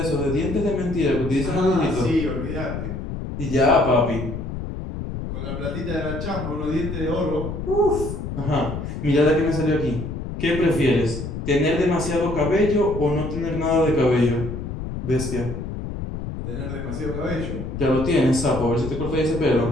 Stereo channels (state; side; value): noise; left; rumble, 6 dB below the sound